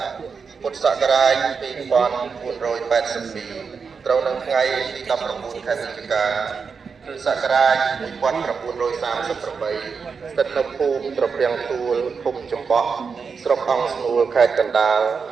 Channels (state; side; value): quieter; left; 5.5 dB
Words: ពុទ្ធសករាជ2482ត្រូវនៅថ្ងៃទី19ខែវិច្ឆិកាគ្រិស្តសករាជ1938ស្ថិតនៅភូមិត្រពាំងទួលភូមិចំបក់ស្រុកអង្គស្នួលខេត្តកណ្ដាលក